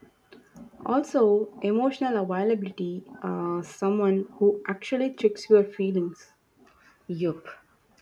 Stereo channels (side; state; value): both; identical; correlation 1.00